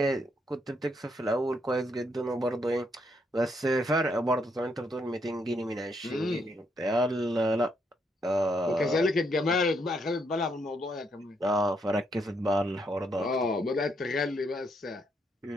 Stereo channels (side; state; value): both; normal; correlation 0.75